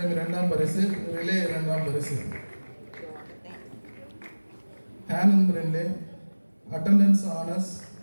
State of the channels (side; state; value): both; inverted; correlation -1.00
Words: 2ஆம் பரிசு. ரிலே 2ஆம் பரிசு. ஹேனன் பிரின்லே அட்டெண்டன்ஸ் ஆனஸ்.